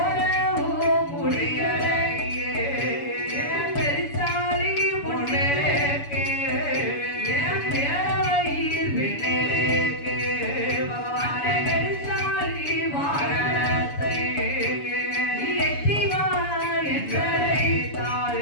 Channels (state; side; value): late; right; 7.0 ms